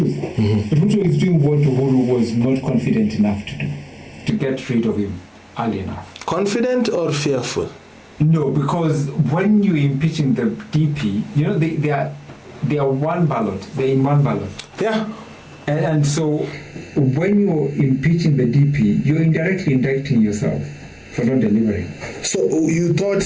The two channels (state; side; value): identical; both; correlation 1.00